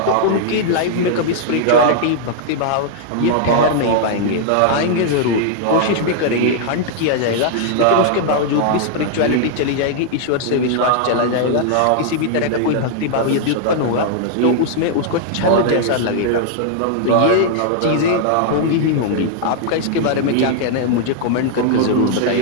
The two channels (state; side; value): different; both; correlation -0.01